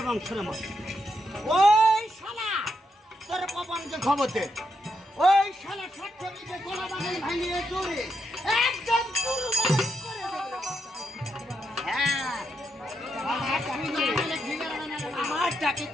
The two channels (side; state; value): both; normal; correlation 0.81